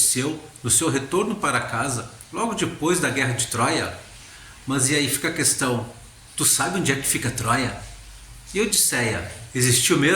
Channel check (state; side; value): identical; both; correlation 1.00